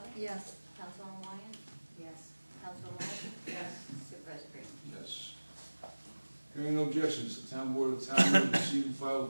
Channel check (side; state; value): both; inverted; correlation -1.00